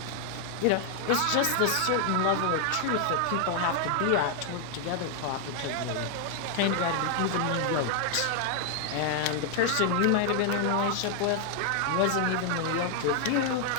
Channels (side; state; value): both; different; correlation 0.00